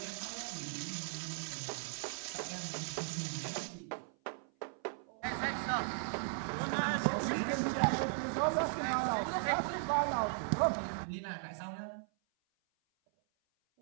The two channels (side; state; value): left; silent; 53 dB below the other